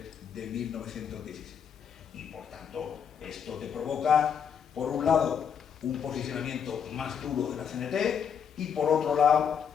de 1917. Y por tanto, esto te provoca, por un lado, un posicionamiento más duro de la CNT, y por otro lado,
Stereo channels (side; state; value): right; quieter; 7.5 dB